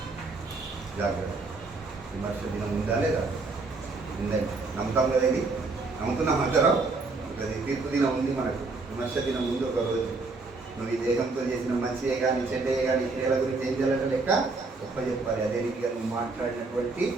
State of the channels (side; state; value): left; quieter; 3.7 dB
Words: జాగ్రత్త. విమర్శ దినం ఉందా లేదా? ఉందండి. నమ్ముతాం కదా? ఇది నమ్ముతున్నాం అందరం. అది తీర్పు దినం ఉంది మనకు. విమర్శ దినం ఉంది ఒక రోజు. నువ్వు ఈ దేహంతో చేసిన మంచియే కానీ చెడ్డయే కానీ క్రియల గురించి ఏం చేయాలంటే లెక్క చెప్పాలి. అదే రీతిగా నువ్వు మాట్లాడినటువంటి